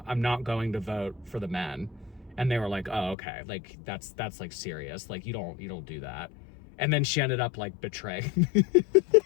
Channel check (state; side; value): drops out; right; at 3.2 s